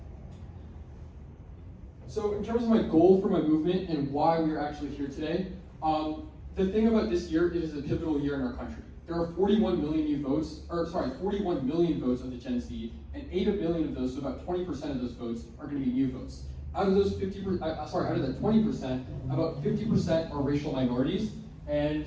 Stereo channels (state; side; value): identical; both; correlation 1.00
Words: So in terms of my goal for my movement and why we are actually here today, the thing about this year, it is a pivotal year in our country. There are 41 million votes of the Gen Z, and 8 million of those, so about 20% of those votes, are going to be new votes. Out of those out of that 20%, about 50% are racial minorities, and